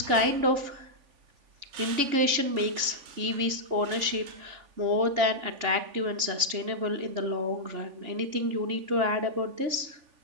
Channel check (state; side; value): late; left; 3.5 ms